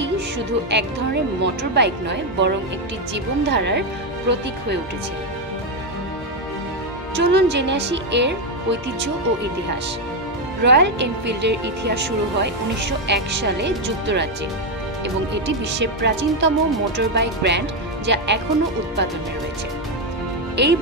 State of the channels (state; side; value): normal; both; correlation 0.06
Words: শুধু এক ধরনের মোটর বাইক নয়, বরং একটি জীবনধারার প্রতীক হয়ে উঠেছে? চলুন জেনে আসি এর ঐতিহ্য ও ইতিহাস। রয়্যাল এনফিল্ডের ইতিহাস শুরু হয় 1901 সালে যুক্তরাজ্যে এবং এটি বিশ্বের প্রাচীনতম মোটর বাইক ব্র্যান্ড, যা এখনও উৎপাদনে রয়েছে। এই